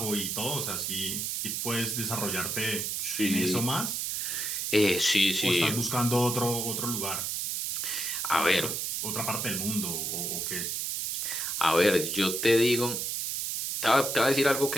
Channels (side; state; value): right; noise; hiss, 2 dB below the sound